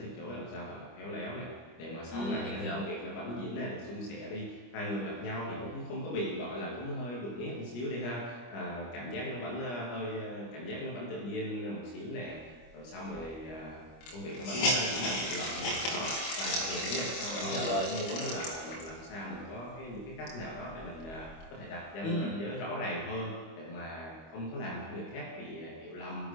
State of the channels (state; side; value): late; right; 25 ms